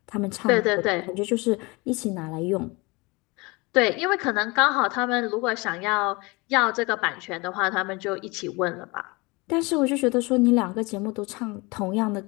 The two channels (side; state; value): right; quieter; 25.7 dB